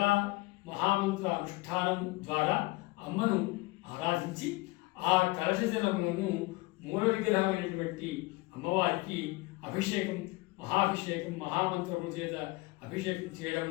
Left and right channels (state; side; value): quieter; right; 22.5 dB